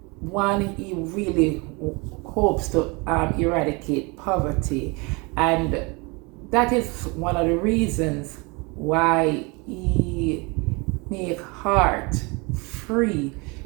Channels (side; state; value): left; quieter; 28.4 dB